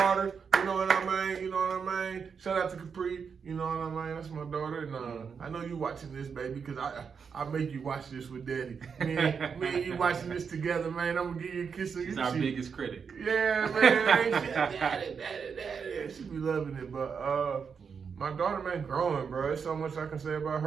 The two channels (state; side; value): quieter; left; 6.2 dB